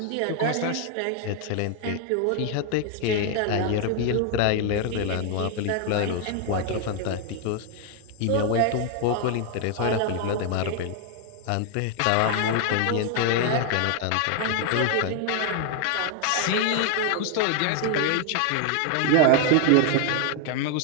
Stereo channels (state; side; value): different; both; correlation 0.00